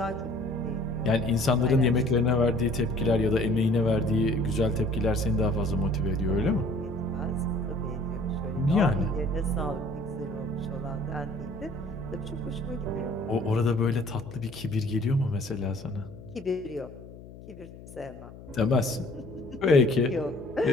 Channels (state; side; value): noise; left; hum, 17 dB below the sound